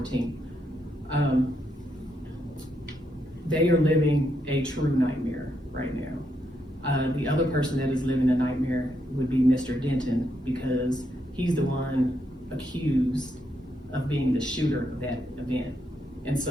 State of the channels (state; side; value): normal; both; correlation 0.79